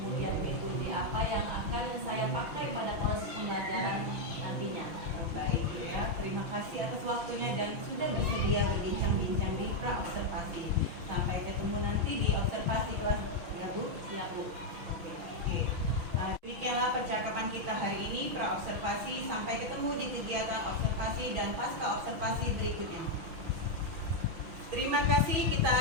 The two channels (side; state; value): left; late; 6.1 ms